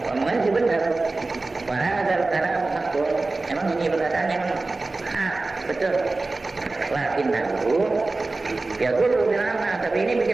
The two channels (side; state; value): left; quieter; 3.3 dB